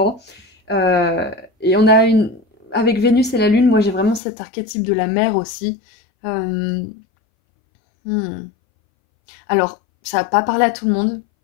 Et on a avec Vénus et la Lune, moi j'ai vraiment cet archétype de la mère aussi. Euh, hmm. Alors, ça va pas parler à tout le monde.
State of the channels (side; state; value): right; drops out; at 4.2 s